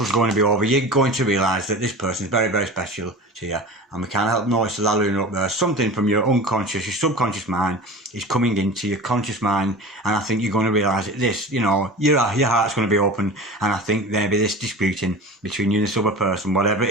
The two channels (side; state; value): both; normal; correlation 0.34